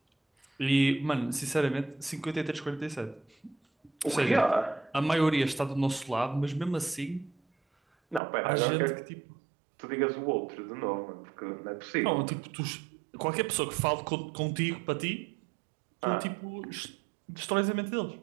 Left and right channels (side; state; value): left; drops out; at 8.2 s